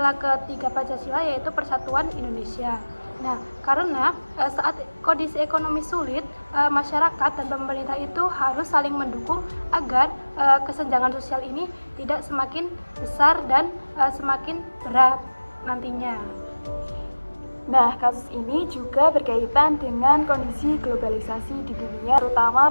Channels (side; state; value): both; inverted; correlation -1.00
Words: ketiga Pancasila, yaitu persatuan Indonesia. Nah, karena saat kondisi ekonomi sulit, masyarakat dan pemerintah itu harus saling mendukung agar kesenjangan sosial ini tidak semakin besar dan semakin berat nantinya. Nah, kasus ini juga berkaitan dengan kondisi globalisasi di dunia, terutama